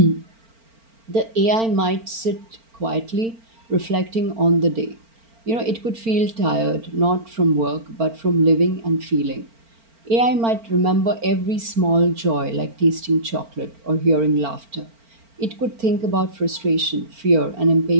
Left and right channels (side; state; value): left; late; 4.4 ms